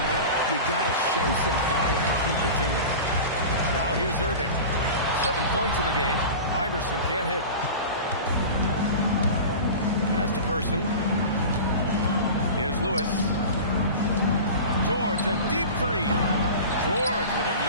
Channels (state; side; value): inverted; both; correlation -0.32